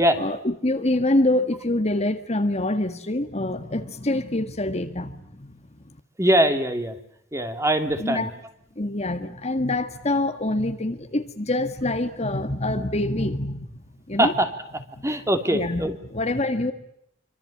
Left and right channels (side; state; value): both; normal; correlation 0.54